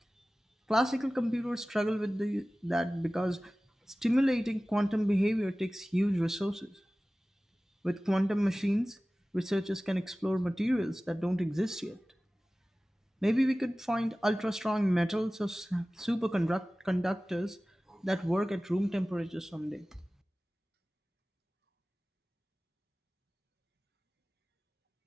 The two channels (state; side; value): normal; both; correlation 0.97